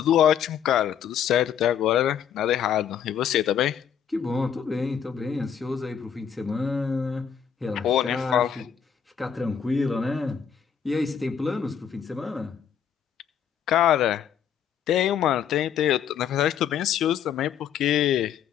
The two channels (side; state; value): right; quieter; 8.3 dB